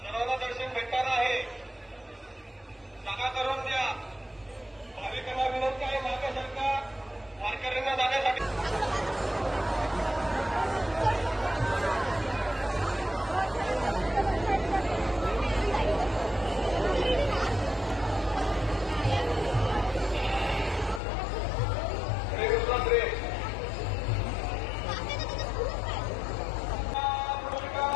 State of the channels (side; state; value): right; drops out; at 21.0 s